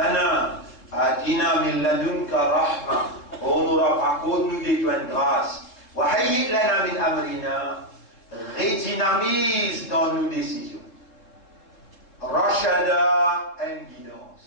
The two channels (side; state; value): right; late; 3.8 ms